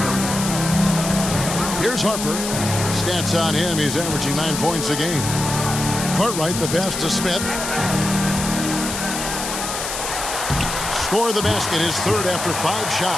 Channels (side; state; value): left; noise; hiss, 5 dB below the sound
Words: Here's Harper. Stats on him, he's averaging 9 points a game. Cartwright, the pass to Smith. Score the basket, his third after 5